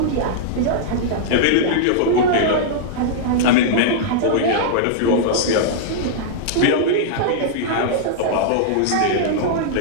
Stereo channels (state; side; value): different; both; correlation -0.02